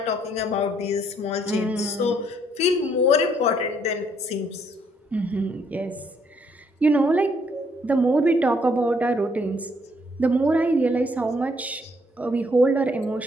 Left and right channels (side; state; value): both; normal; correlation 0.68